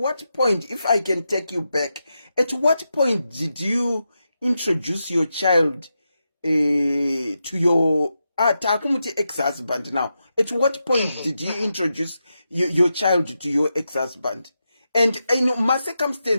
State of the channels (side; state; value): both; inverted; correlation -0.88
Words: point, if I can take you back, at what point did you introduce your child to your takumuti ex-husband now? At what point did you introduce your child to your ex-husband? And my